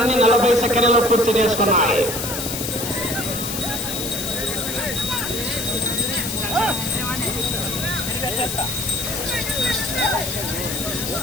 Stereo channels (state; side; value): noise; left; hiss, 4 dB below the sound